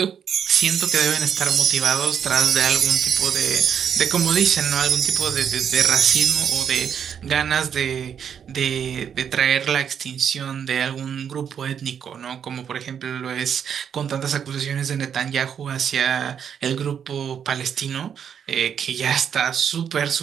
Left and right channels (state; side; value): quieter; left; 8.1 dB